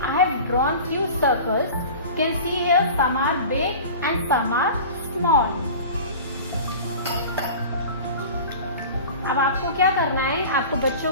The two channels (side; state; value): both; inverted; correlation -0.37